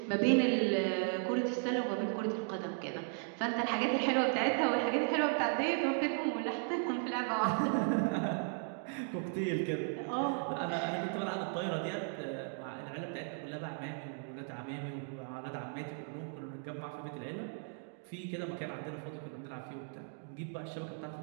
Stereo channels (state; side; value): silent; left; 54 dB below the other